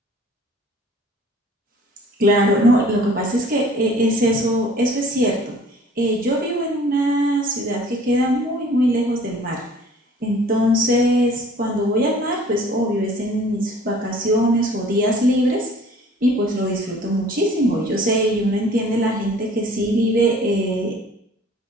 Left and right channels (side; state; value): both; normal; correlation 0.51